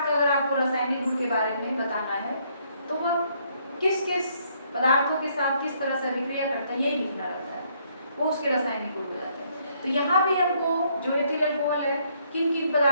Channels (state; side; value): inverted; both; correlation -0.69